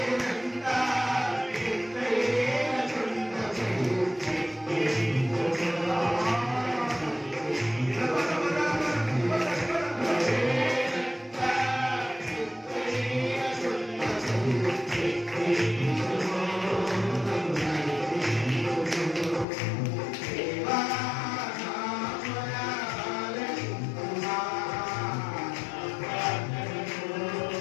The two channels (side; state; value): right; drops out; at 19.5 s